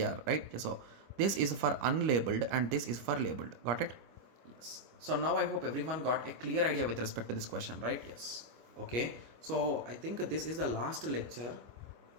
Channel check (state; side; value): late; left; 25 ms